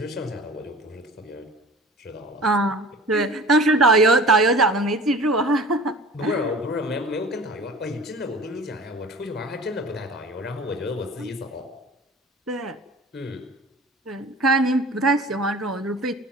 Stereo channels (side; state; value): both; normal; correlation 0.42